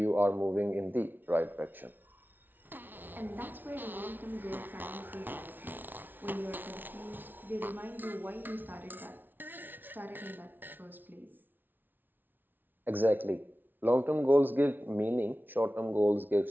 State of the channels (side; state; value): left; late; 0.091 ms